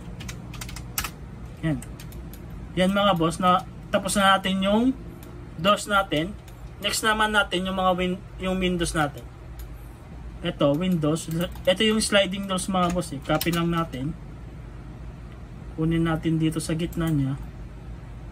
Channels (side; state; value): both; identical; correlation 1.00